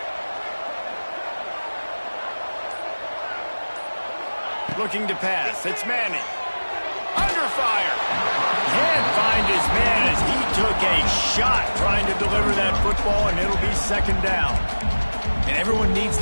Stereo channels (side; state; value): both; inverted; correlation -1.00